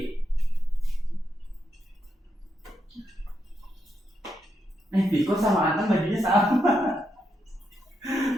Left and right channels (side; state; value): both; normal; correlation 0.82